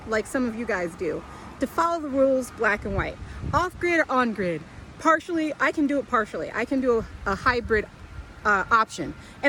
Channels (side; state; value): both; identical; correlation 1.00